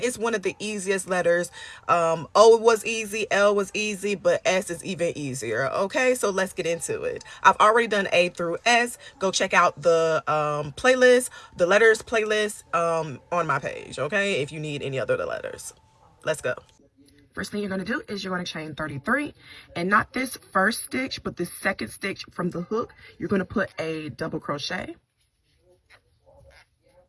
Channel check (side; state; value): both; identical; correlation 1.00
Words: it's one of the easiest letters. O was easy, L was easy, but S is even easier, okay? So let's get into it. I've already done A through S. Go check out the playlist, the letters playlist on my page, okay? If you need any other of the letters. Let's go. First thing you're going to do is you're going to chain 33, and not this first stitch, but this second stitch from the hook. You're going to put a double crochet,